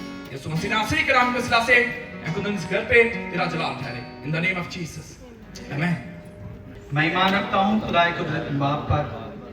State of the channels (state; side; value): identical; both; correlation 1.00